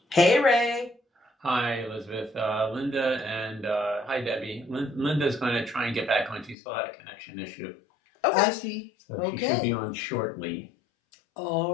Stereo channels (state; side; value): drops out; right; at 6.6 s